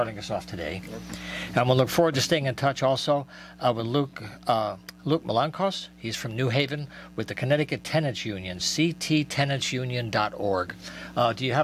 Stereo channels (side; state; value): both; identical; correlation 1.00